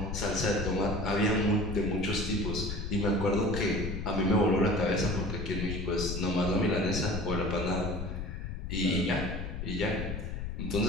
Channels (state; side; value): noise; left; rumble, 5 dB below the sound